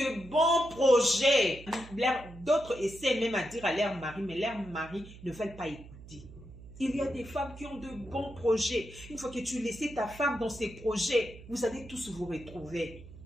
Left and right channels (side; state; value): right; noise; hum, 17 dB below the sound